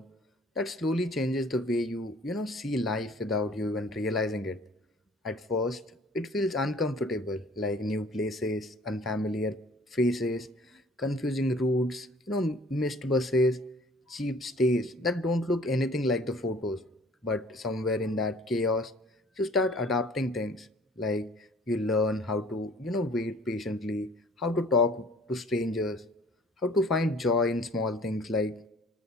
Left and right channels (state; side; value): normal; both; correlation 0.52